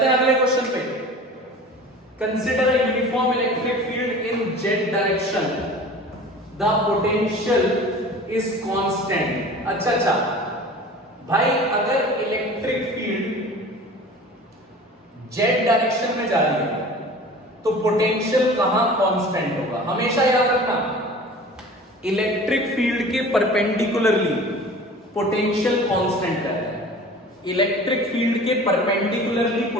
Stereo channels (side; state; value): both; normal; correlation 0.41